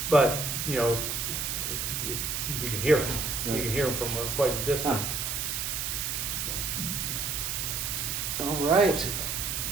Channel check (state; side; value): noise; right; hiss, 1 dB below the sound